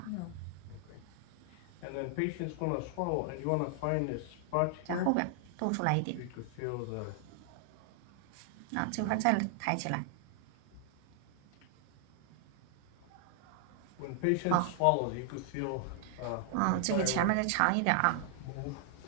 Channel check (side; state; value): both; different; correlation 0.00